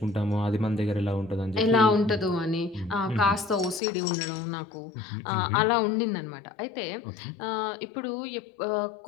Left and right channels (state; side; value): drops out; right; at 3.8 s